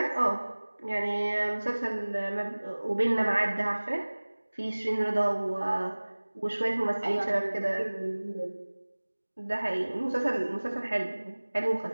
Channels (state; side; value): inverted; both; correlation -1.00